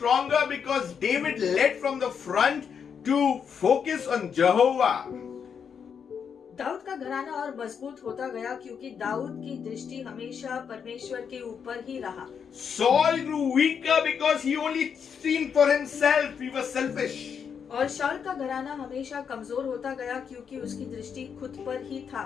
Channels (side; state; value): right; quieter; 7.0 dB